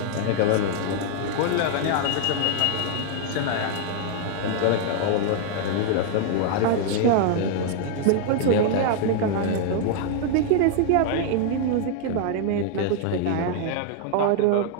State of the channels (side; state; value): both; different; correlation -0.01